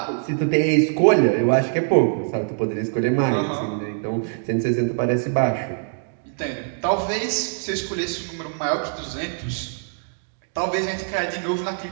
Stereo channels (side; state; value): left; silent; digital silence